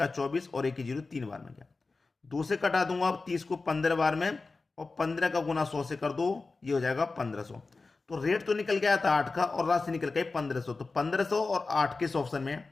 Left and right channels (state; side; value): quieter; right; 3.8 dB